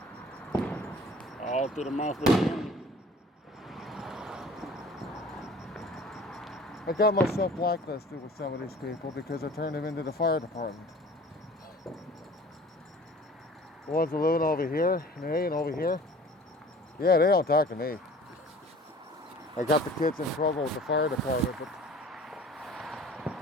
All through the month with the I got myself blacklisted with some of these people because I turned them into the fire department. The ones that are living over here, and over here, yeah, they don't talk to me. I got the kids in trouble with the fire department, but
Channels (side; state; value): both; normal; correlation 0.46